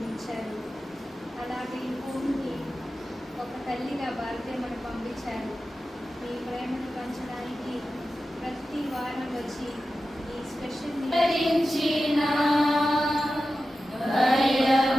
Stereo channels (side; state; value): both; normal; correlation 0.93